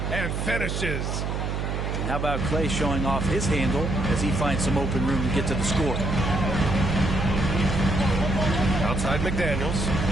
and finishes. And how about Clay showing off his handle as he finds some open room to get to the score? Outside McDaniels.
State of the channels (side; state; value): right; noise; hum, 2 dB below the sound